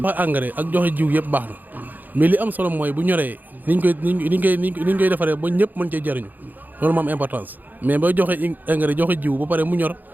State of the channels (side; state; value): left; late; 0.085 ms